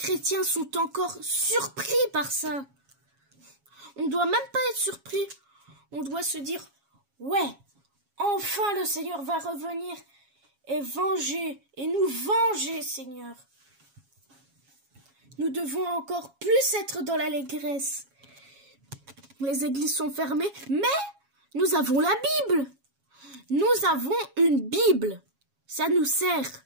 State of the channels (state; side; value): late; left; 7.3 ms